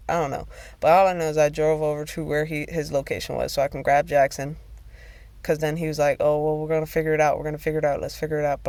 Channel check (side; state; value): both; identical; correlation 1.00